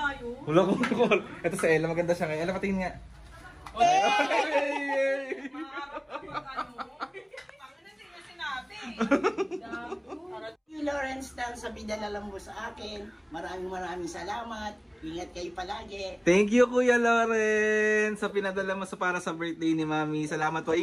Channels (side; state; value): both; identical; correlation 1.00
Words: yun. Wala kong call. Ito si Ella, maganda siya ngayon. Ella, patingin nga. Lawrence Dan sa pinadala mo sa akin. Maraming salamat. Ingat kayo palagi. Thank you, Kuya Loren, sa pinadala mo para sa birthday ni Mami. Salamat po.